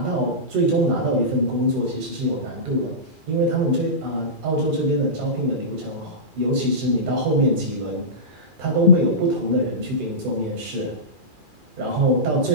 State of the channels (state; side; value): late; left; 2.4 ms